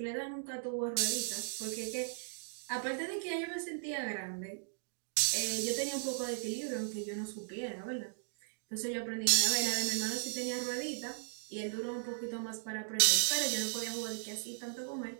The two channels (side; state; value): left; silent; digital silence